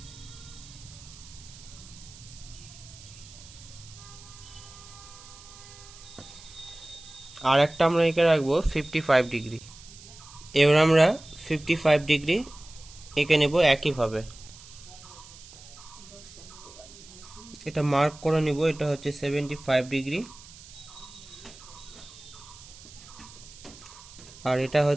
আর একটা আমরা এঁকে রাখবো 55 ডিগ্রি। এবার আমরা 55 ডিগ্রি এঁকে নেব একইভাবে। এটা মার্ক করে নিব, এটা হচ্ছে 75 ডিগ্রি আর এটা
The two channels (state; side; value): noise; right; hiss, 19 dB below the sound